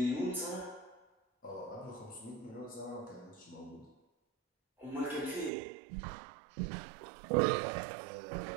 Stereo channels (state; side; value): drops out; left; at 5.5 s